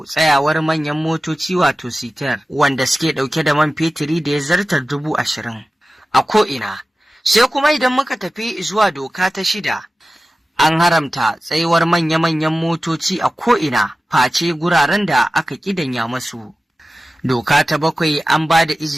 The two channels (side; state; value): both; normal; correlation 0.95